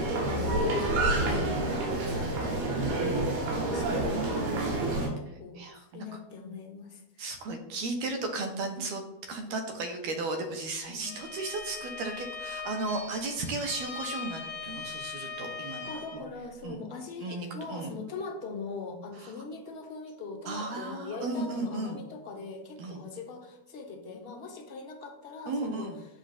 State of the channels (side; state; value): left; late; 12 ms